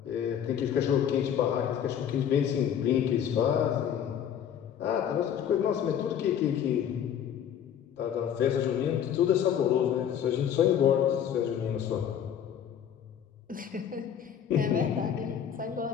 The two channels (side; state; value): right; quieter; 9.1 dB